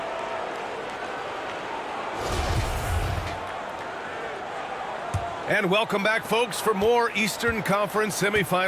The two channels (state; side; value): identical; both; correlation 1.00